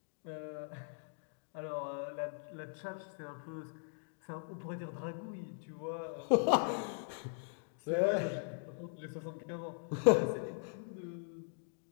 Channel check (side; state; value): right; silent; digital silence